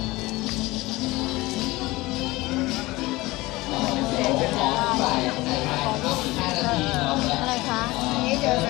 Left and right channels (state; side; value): quieter; right; 20.4 dB